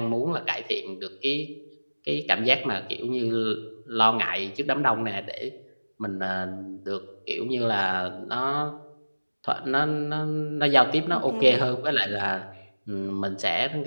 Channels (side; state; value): both; inverted; correlation -1.00